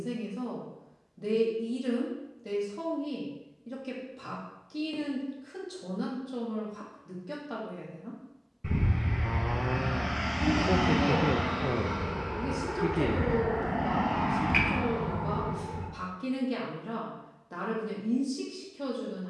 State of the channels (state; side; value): identical; both; correlation 1.00